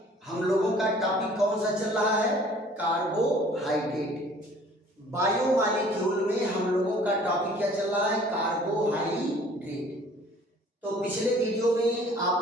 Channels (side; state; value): both; normal; correlation 0.53